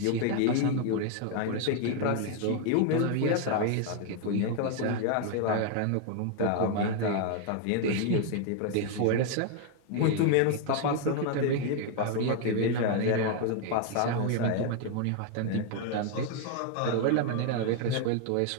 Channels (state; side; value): different; both; correlation 0.00